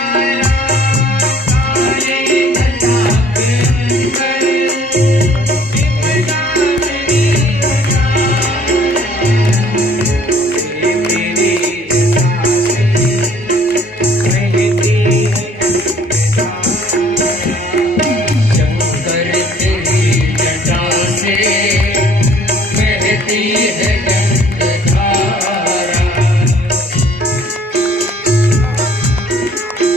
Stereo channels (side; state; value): both; normal; correlation 0.57